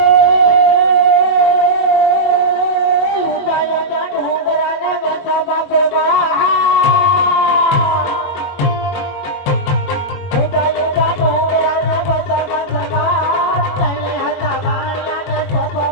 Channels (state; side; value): late; right; 22 ms